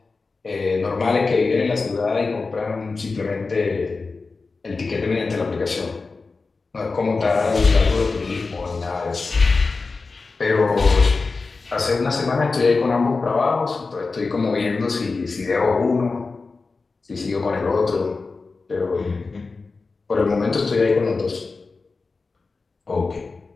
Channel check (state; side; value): quieter; right; 4.1 dB